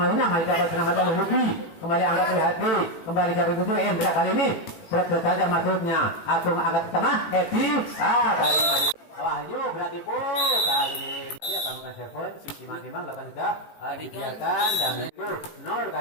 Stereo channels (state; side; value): late; right; 18 ms